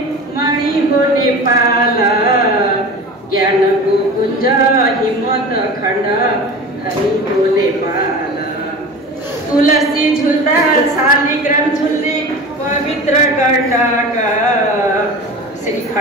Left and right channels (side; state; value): both; normal; correlation 0.34